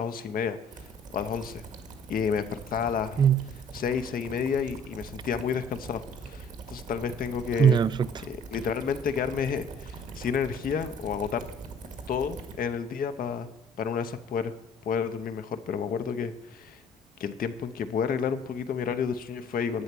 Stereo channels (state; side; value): normal; both; correlation 0.54